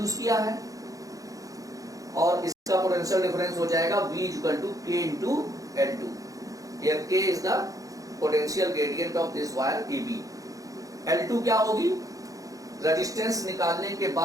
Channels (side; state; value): left; late; 0.17 ms